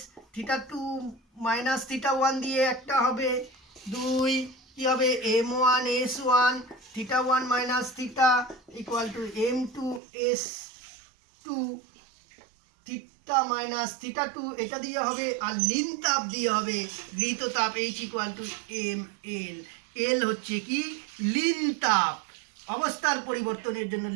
θ2 - θ1 দিয়ে একটা হবে। 2 কি হবে? m1 s1 θ1 - θ = m2 s2 θ - θ2, এটা দিয়ে হবে। আর লিন তাপ দিয়ে হবে গৃহীত তাপ H = ml। এল হচ্ছে কি? লিন তাপ। অবস্থার পরিবর্তনের জন্য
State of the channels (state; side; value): drops out; left; at 10.0 s